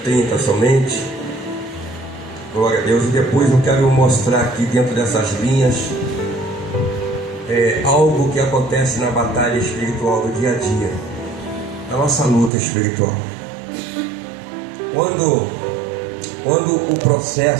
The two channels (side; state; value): left; drops out; at 12.5 s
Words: somente. Glória a Deus. E depois eu quero mostrar aqui dentro dessas linhas algo que acontece na batalha espiritual do dia a dia, na nossa luta espiritual. Quando o